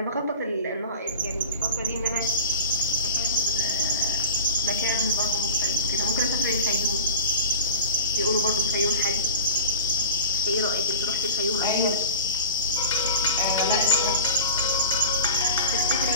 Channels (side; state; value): both; inverted; correlation -0.36